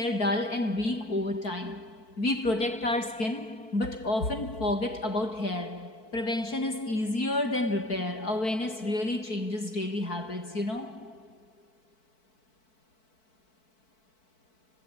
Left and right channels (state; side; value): late; right; 4.6 ms